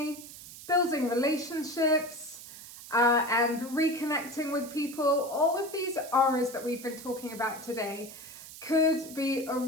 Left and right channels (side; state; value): right; noise; hiss, 15 dB below the sound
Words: building relationships, and reconnecting with people, all of these R's that we've been talking about today could be a